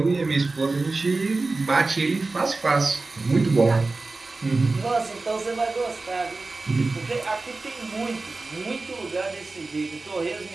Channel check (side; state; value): left; quieter; 3.5 dB